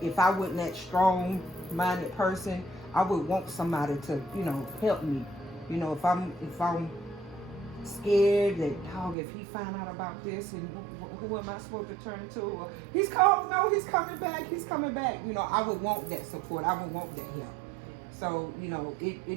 if I wasn't that strong-minded person, I would want somebody to, you know, help me. You know, if I'm scared that, dog, if he find out about this, and who am I supposed to turn to? Or, he's coming back. You know, I would want that support. I would want that help. So, you know,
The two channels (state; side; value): drops out; left; at 9.2 s